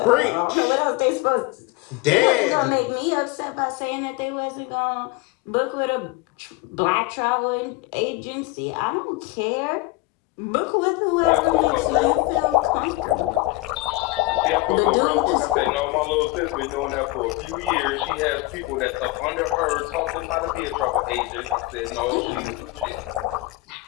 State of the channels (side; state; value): right; quieter; 20.8 dB